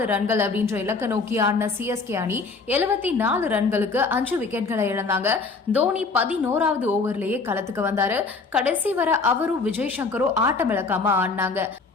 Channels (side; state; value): right; quieter; 4.3 dB